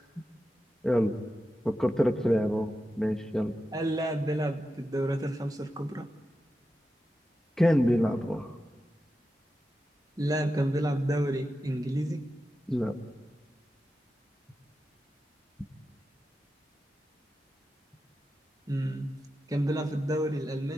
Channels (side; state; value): both; normal; correlation 0.91